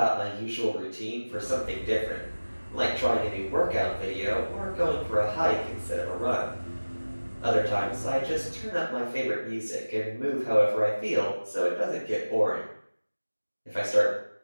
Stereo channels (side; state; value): both; inverted; correlation -1.00